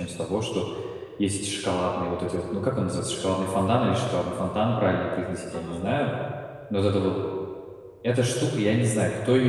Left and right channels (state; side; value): identical; both; correlation 1.00